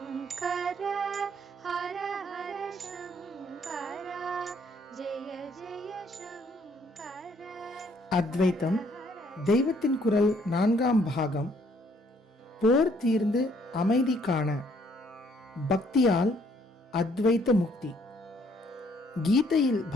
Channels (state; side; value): normal; both; correlation 0.65